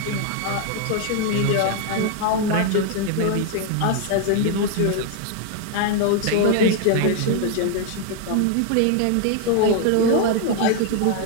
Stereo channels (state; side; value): different; both; correlation 0.00